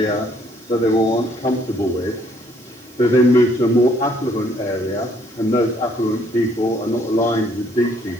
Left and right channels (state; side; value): noise; right; hiss, 27 dB below the sound